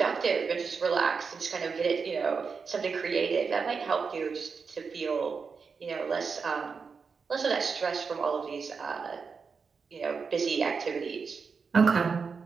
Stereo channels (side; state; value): left; quieter; 5.3 dB